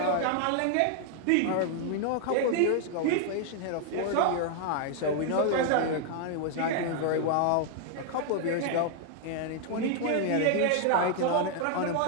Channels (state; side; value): different; both; correlation 0.00